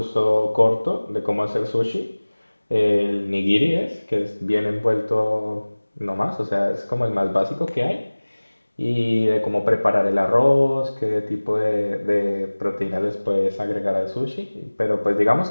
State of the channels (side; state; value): both; inverted; correlation -1.00